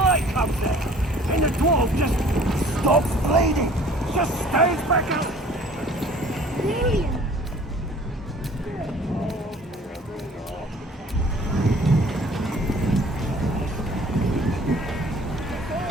comes out. And the dwarf just stops bleeding. Just stays back up. Brilliant.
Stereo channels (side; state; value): both; normal; correlation 0.51